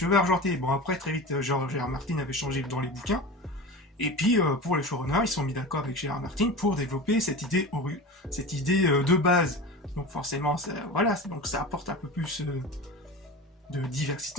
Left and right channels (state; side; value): normal; both; correlation 0.30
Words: argentés. Bon, après, très vite, George R. Martin avait changé dans les bouquins. Et puis, pour les showrunners, ils sont mis d'accord avec Gérard Martin pour développer cette idée de base. Donc forcément, voilà, donc ça apporte un peu plus de